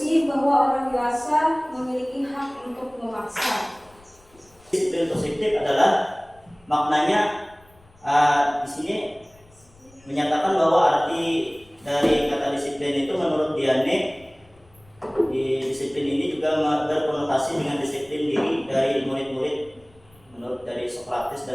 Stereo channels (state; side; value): noise; left; rumble, 29 dB below the sound